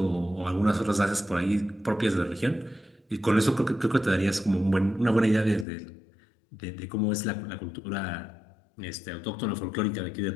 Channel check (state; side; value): drops out; right; at 5.7 s